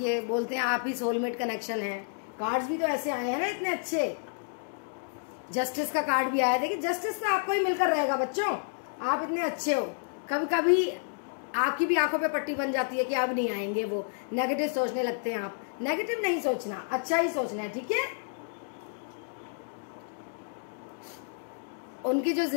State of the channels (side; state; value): right; silent; digital silence